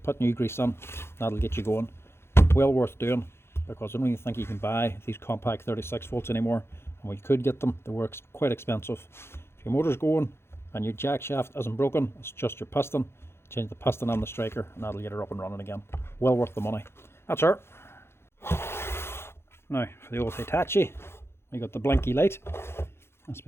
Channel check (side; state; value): right; late; 0.12 ms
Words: put new grease on, that'll get you going. Well worth doing, because I don't even think you can buy these compact 36 volts anymore. And when you could get them, they were quite expensive. If your motor's going and your jack shaft isn't broken, it's just your piston, change the piston on the striker and that'll get her up and running again. Well worth the money. That's her. Now for the old Hitachi, we got the blinky light. That's